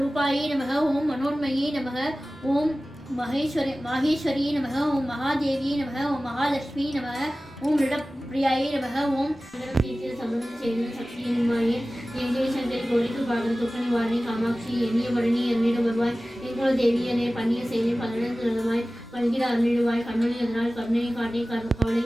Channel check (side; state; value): both; normal; correlation 0.97